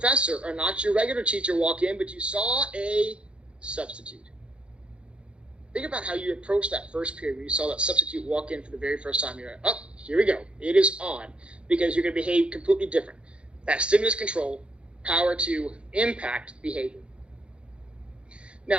or not your regular teacher walk in, but you saw a substitute? Think about how you approached that first period when you saw that substitute walk in for the very first time. You're like, oh, here we go. It is on, because you're going to behave completely different. That stimulus control, power to impact behavior.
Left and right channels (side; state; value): left; late; 0.058 ms